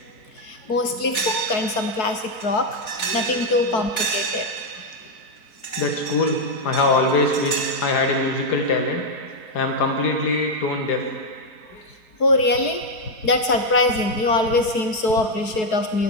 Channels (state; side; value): late; right; 4.6 ms